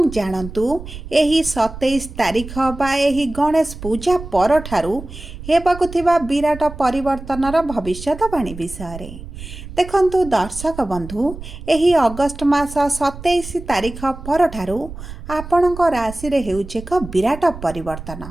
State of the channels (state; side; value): noise; right; rumble, 12 dB below the sound